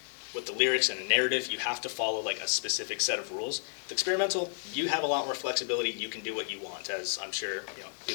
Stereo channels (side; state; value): right; silent; digital silence